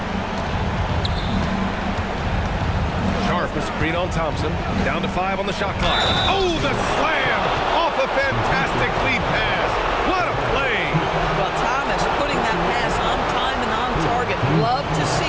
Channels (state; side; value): identical; both; correlation 1.00